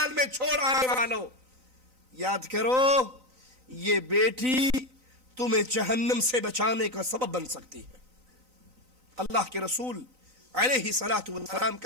میں چھوڑ آنے والوں، یاد کرو یہ بیٹی تمہیں جہنم سے بچانے کا سبب بن سکتی ہے. اللہ کے رسول علیہ الصلوۃ والسلام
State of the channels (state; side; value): late; left; 3.9 ms